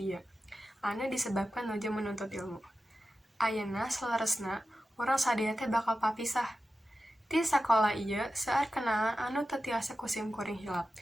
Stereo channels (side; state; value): both; normal; correlation 0.93